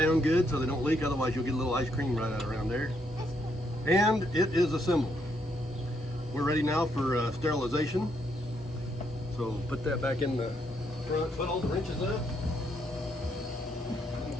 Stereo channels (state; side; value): normal; both; correlation 0.75